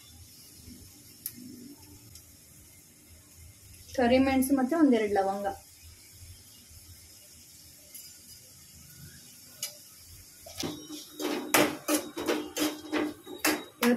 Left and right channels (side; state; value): both; identical; correlation 1.00